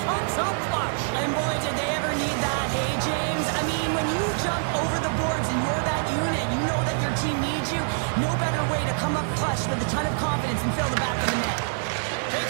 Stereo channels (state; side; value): silent; left; digital silence